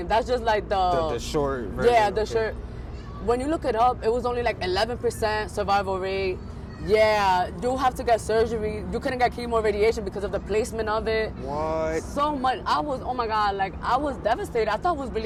That's just like The short version. yeah, the okay. short. When you look it up, it was only like 11% survival rate. Yeah, you have to get surgery. You couldn't get chemo or radiation because of the placement of it. What? So much. I was, oh my God, like, I was devastated. I thought I was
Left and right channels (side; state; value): both; identical; correlation 1.00